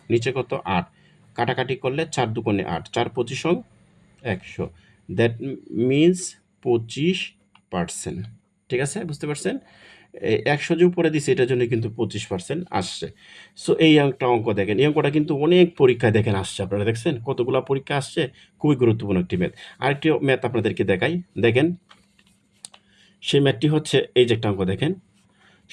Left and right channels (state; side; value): identical; both; correlation 1.00